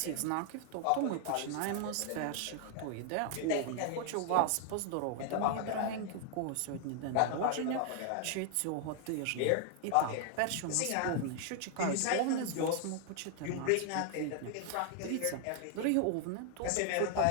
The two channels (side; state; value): both; different; correlation 0.00